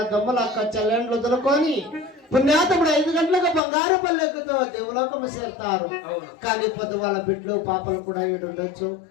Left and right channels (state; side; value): drops out; right; at 3.6 s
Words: దమ్ములు అక్క చెల్లెండ్లు వదులుకొని పుణ్యాతముడు 5 గంటలకు బంగారు పల్లెక్కుతో దేవలోకము చేరుతారు. కానీ పొద్దు వాళ్ళ బిడ్డలు పాపలు కూడా ఉండొచ్చు.